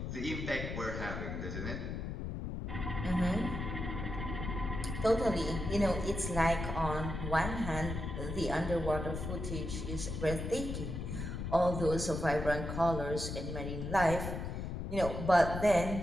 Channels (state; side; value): noise; left; rumble, 5 dB below the sound